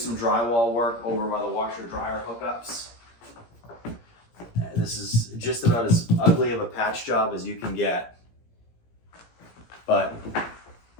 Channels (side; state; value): right; late; 17 ms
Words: drywall work over by the washer dryer hookups. This is just about as ugly of a patch job as you can get. But